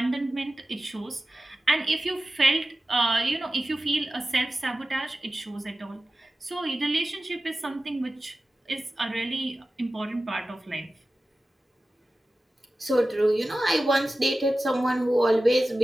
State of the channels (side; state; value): both; normal; correlation 0.95